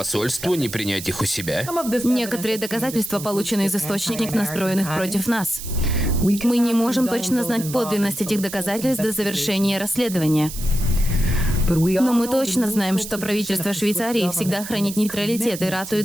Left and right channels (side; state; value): right; noise; hiss, 10 dB below the sound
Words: не принять их у себя? Некоторые доказательства получены из источников, настроенных против нас. Мы не можем точно знать подлинность этих доказательств до завершения расследования. Но мы точно знаем, что правительство Швейцарии всегда хранит нейтралитет и